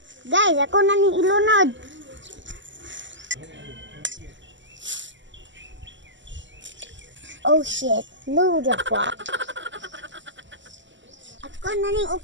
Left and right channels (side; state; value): left; late; 0.54 ms